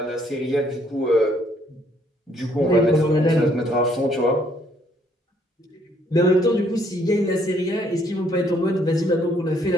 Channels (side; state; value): both; normal; correlation 0.67